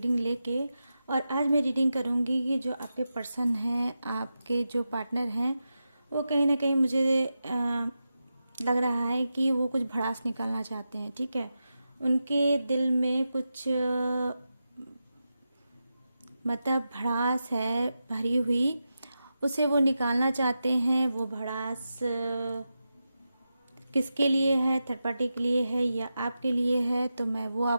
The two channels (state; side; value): inverted; both; correlation -0.90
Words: लेके। और आज मैं रीडिंग करूँगी कि जो आपके पर्सन हैं, आपके जो पार्टनर हैं, वो कहीं ना कहीं मुझे लग रहा है कि वो कुछ भड़ास निकालना चाहते हैं। ठीक है, उनके दिल में कुछ मतलब भड़ास है भरी हुई, उसे वो निकालना चाहते हैं। वो भड़ास किसके लिए है, थर्ड पार्टी के लिए है या आपके लिए है, तो मैं वो